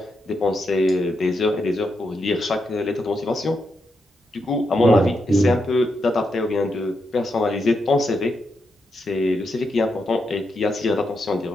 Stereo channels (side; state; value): both; normal; correlation 0.83